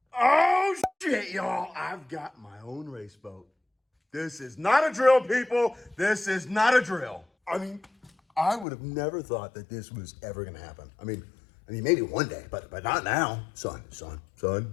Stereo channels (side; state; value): right; drops out; at 8.7 s